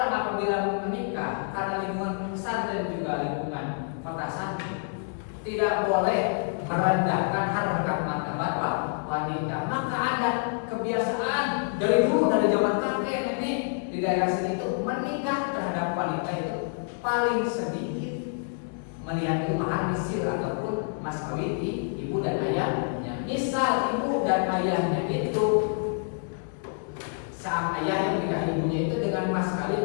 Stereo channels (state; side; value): silent; right; 60 dB below the other